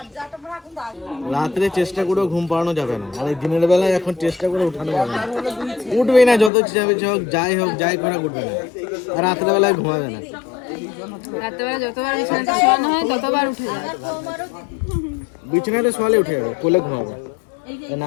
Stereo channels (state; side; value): drops out; right; at 6.5 s